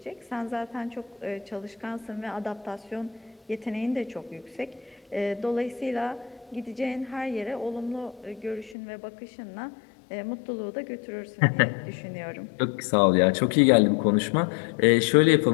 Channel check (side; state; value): right; drops out; at 8.8 s